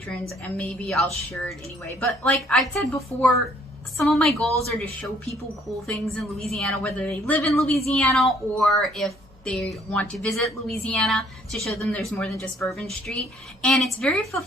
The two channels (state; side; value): normal; both; correlation 0.62